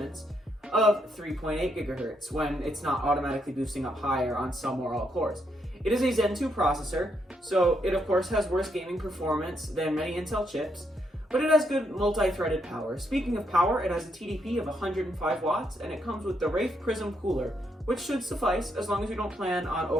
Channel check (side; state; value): both; normal; correlation 0.77